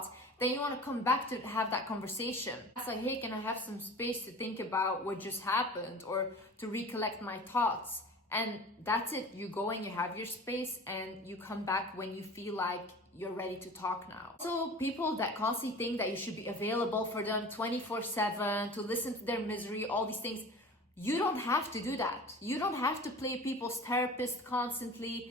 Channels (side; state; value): both; normal; correlation 0.39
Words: then you want to come back to have that conversation. It's like, hey, can I have some space to think about what just happened or to recollect my thoughts? And that's it. You go and you have your space and you come back when you feel like you're ready to talk now. So people that constantly think that you should be available for them 24/7, to listen to their misery, all these things, you don't have to do that. You don't have to play people's therapist